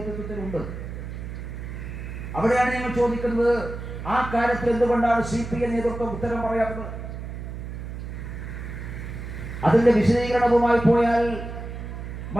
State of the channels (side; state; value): right; noise; hum, 8 dB below the sound